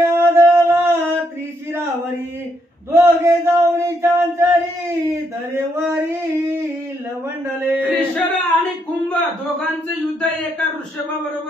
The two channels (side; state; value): both; normal; correlation 0.76